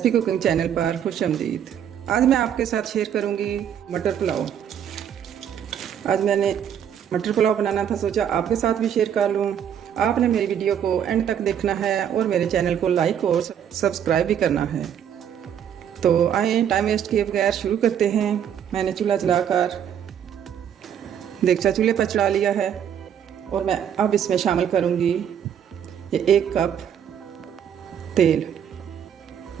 कुकिंग चैनल पर खुश आमदीद। आज मैं आपके साथ शेयर करूंगी मटर पुलाव। आज मैंने मटर पुलाव बनाना था, सोचा आपके साथ भी शेयर कर लूं। आपने मेरी वीडियो को एंड तक देखना है और मेरे चैनल को लाइक और सब्सक्राइब भी करना है। तो आए टाइम वेस्ट किए बगैर शुरू करते हैं। मैंने चूल्हा जलाकर देगचा चूल्हे पर चढ़ा लिया है और मैं अब इसमें शामिल करूंगी ये 1 कप तेल।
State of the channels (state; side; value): quieter; left; 9.1 dB